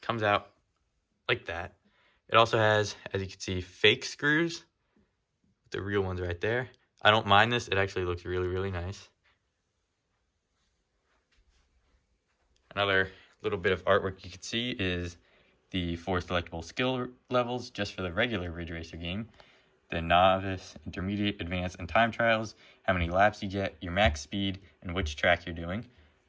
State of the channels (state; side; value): identical; both; correlation 1.00